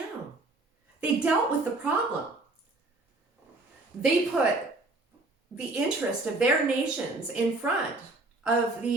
They dealt with the problem. They put the interest of their nations in front of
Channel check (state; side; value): quieter; left; 3.0 dB